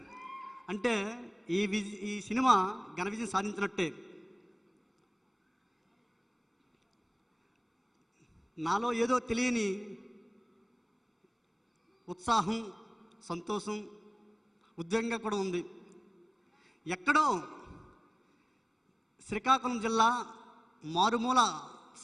అంటే ఈ సినిమా ఘన విజయం సాధించినట్టే. నాలో ఏదో తెలియని ఉత్సాహం, సంతోషం, ఉద్వేగంగా కూడా ఉంది. ఎక్కడో శ్రీకాకుళం జిల్లా మారుమూల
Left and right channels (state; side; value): identical; both; correlation 1.00